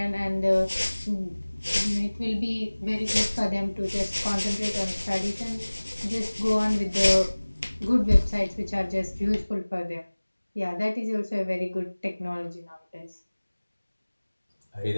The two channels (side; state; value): both; inverted; correlation -1.00